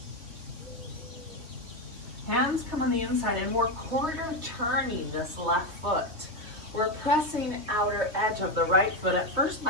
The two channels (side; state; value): left; late; 3.0 ms